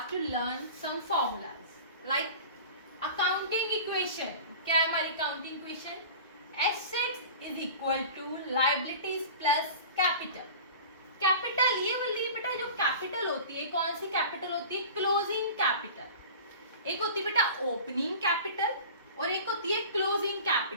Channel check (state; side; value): inverted; both; correlation -0.38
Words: to learn some formulas like accounting equation. क्या है हमारी accounting equation? Assets is equal to liabilities plus capital. Capital ये वाली बेटा जो कैपिटल होती है, कौन सी कैपिटल होती है? Closing capital. एक होती है बेटा ओपनिंग कैपिटल और एक होती है क्लोजिंग